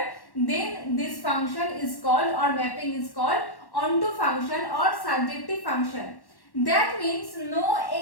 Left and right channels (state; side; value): late; right; 1.1 ms